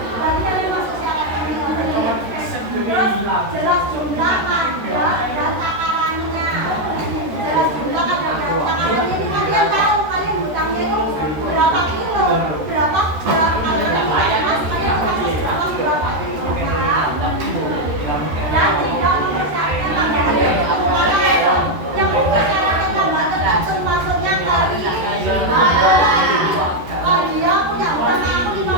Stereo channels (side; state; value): left; late; 13 ms